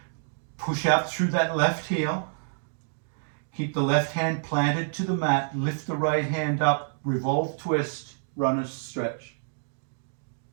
Push out through that left heel. Keep the left hand planted to the mat. Lift the right hand up. Revolve twist. Runner's stretch.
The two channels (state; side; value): silent; left; digital silence